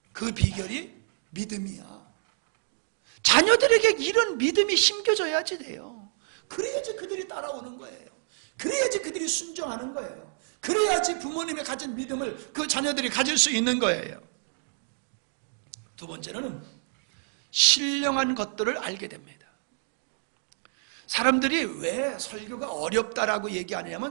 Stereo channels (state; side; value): silent; left; digital silence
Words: 그 비결이 믿음이야. 자녀들에게 이런 믿음이 심겨져야지 돼요. 그래야지 그들이 따라오는 거예요. 그래야지 그들이 순종하는 거예요. 그래야지 부모님이 가진 믿음을 그 자녀들이 가질 수 있는 거예요. 두 번째는 신령한 것들을 알게 됩니다. 사람들이 왜 설교가 어렵다라고